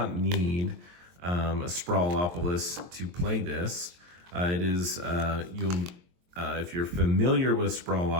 need a Sprawlopolis to play this. It is, if you're familiar with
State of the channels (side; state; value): left; late; 23 ms